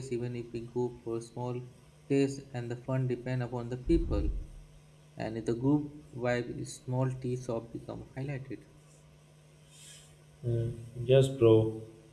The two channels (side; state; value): both; identical; correlation 1.00